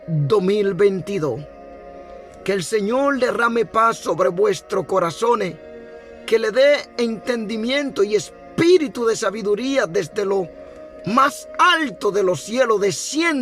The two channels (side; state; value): both; identical; correlation 1.00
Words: 2022. Que el Señor derrame paz sobre vuestros corazones, que le dé entendimiento y espíritu de sabiduría desde lo más alto de los cielos